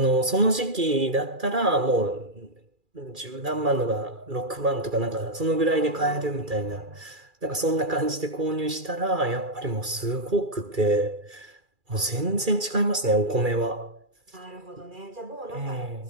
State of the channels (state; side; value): late; left; 2.4 ms